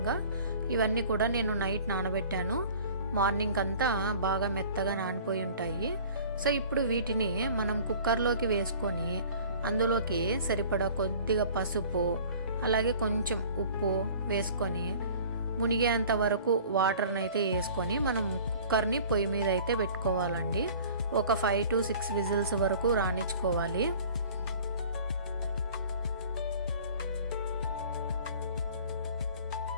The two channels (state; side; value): inverted; both; correlation -0.47